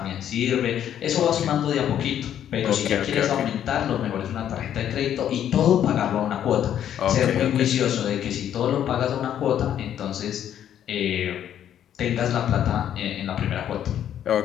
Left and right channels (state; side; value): quieter; right; 10.2 dB